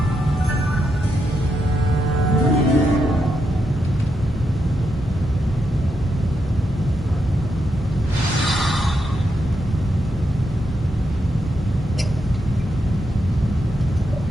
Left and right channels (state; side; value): normal; both; correlation 0.83